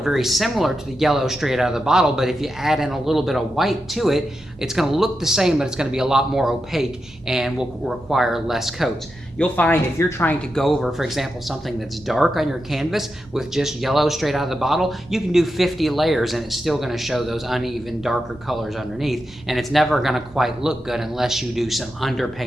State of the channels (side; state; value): both; normal; correlation 0.88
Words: similar to the yellow straight out of the bottle, but if you add in a little bit of white to it, it's going to look the same, but it's going to be a lot more opaque and will require less coats. You'll find if you're trying to go over, for example, something that's dark on your canvas with just yellow straight out of the bottle, you can do 50 layers and it's still going to show those uneven, darker colors underneath, and it's never going to quite look good unless you do some